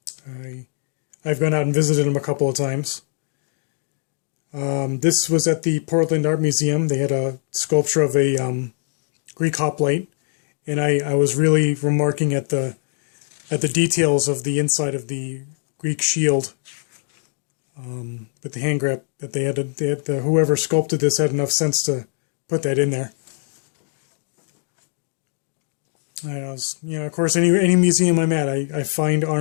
gone out and visited them a couple of times. This was at the Portland Art Museum. They had a sculpture of a Greek hoplite, and I was really remarking at the details of the inside of the Greek shield. With the hand grip that they had whoever sculpted this had enough sense to put that in there. Of course, any museum I'm at, I find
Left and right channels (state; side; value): silent; right; digital silence